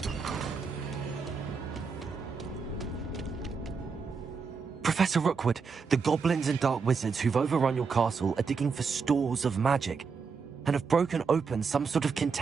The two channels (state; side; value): quieter; left; 5.3 dB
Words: Professor Rookwood, the goblins and dark wizards who've overrun your castle are digging for stores of magic and have broken open some sort of